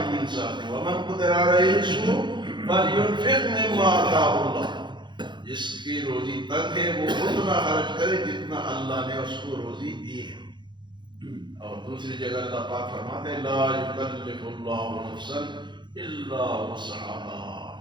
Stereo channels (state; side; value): late; left; 0.22 ms